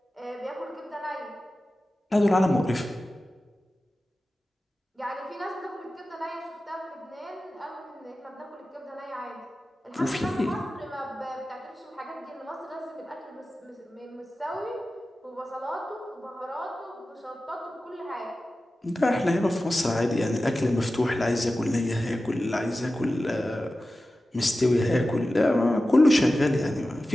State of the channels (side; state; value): both; normal; correlation 0.94